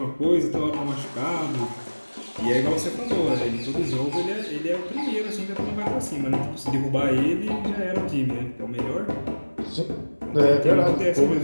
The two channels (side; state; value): both; inverted; correlation -1.00